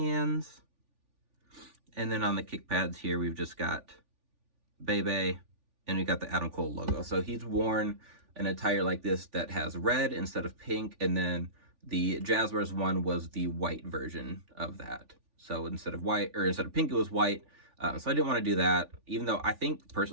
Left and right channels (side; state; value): left; late; 3.4 ms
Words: And then on the kick pads here, we've just got Bebe, and we got the Adam Cole logo. So he's worn an attire like this that has red instead of pink, and then the Jazzwares one was the white version of that. So instead of pink, it was white. So I didn't want to do that, even though I think